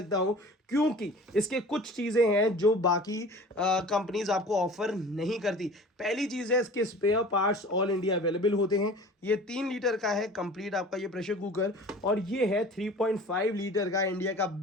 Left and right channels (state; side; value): normal; both; correlation 0.42